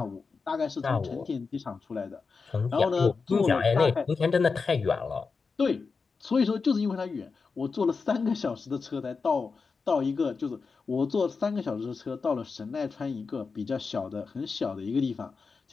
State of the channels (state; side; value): quieter; right; 4.8 dB